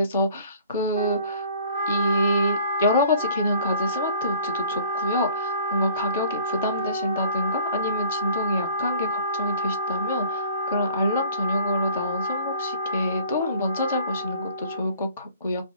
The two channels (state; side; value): inverted; both; correlation -0.52